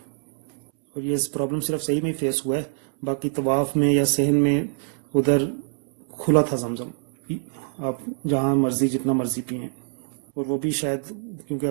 اور یہ پرابلم صرف صحیح میں ہی فیس ہوا ہے, باقی طواف میں یا صحن میں ادھر کھلا تھا زمزم, آپ جہاں مرضی جتنا مرضی پئیں. اور وہ بھی شاید کیونکہ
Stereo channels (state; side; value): silent; left; 62 dB below the other